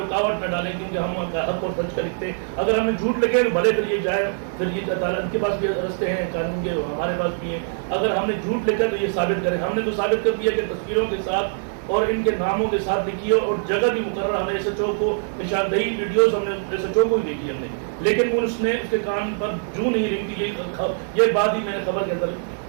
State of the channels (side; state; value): left; silent; digital silence